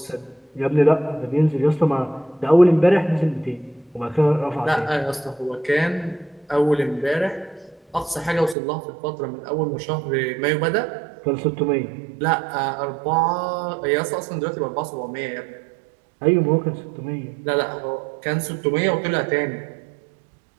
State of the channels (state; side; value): drops out; left; at 8.6 s